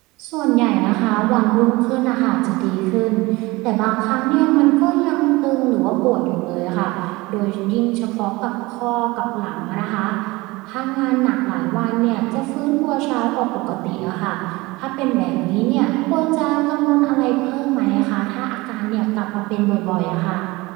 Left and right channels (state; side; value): quieter; left; 22.0 dB